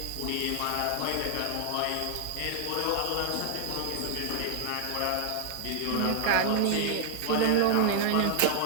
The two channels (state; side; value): different; both; correlation -0.01